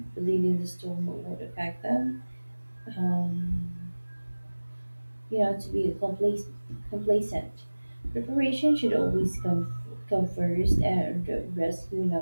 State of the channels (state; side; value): inverted; both; correlation -1.00